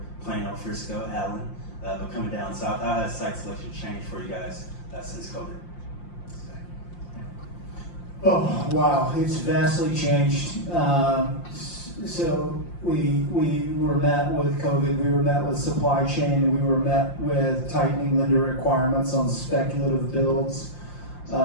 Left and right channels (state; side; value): late; right; 5.7 ms